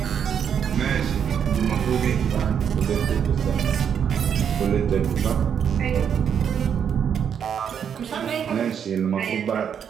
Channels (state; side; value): quieter; left; 8.0 dB